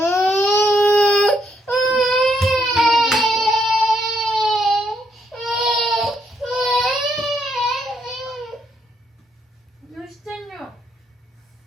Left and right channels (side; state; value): both; normal; correlation 0.75